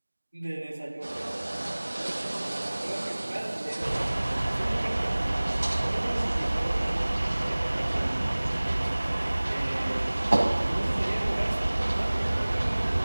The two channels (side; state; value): both; inverted; correlation -1.00